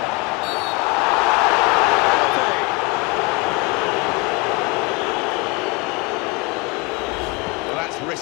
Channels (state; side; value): quieter; right; 25.3 dB